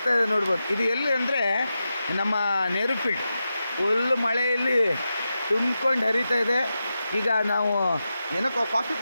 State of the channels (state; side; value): inverted; both; correlation -0.90